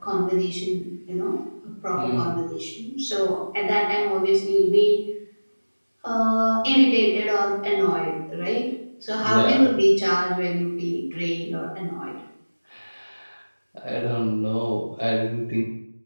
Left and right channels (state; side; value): inverted; both; correlation -1.00